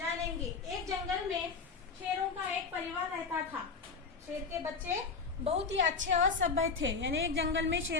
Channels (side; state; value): right; quieter; 4.9 dB